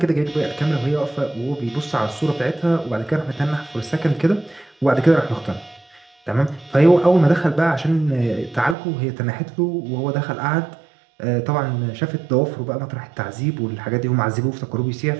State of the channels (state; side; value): drops out; left; at 8.8 s